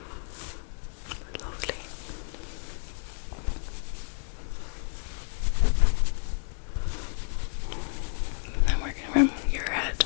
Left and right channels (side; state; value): right; silent; digital silence